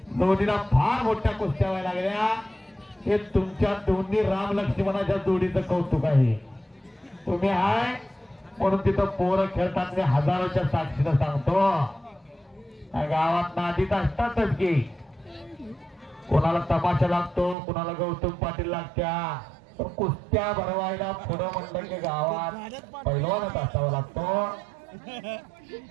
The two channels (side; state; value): left; drops out; at 17.6 s